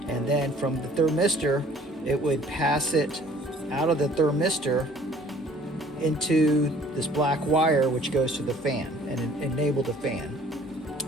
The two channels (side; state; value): both; normal; correlation 0.54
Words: and then from the thermistor it would pass it out of the thermistor into this black wire, which goes to the fan and enable the fan.